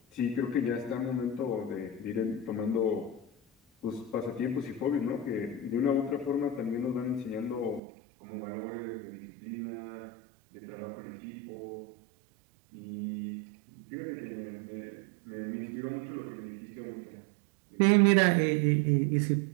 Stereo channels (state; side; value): drops out; left; at 7.8 s